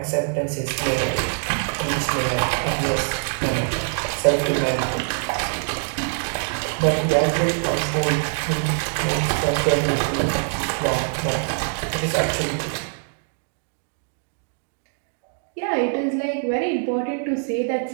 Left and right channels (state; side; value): silent; left; digital silence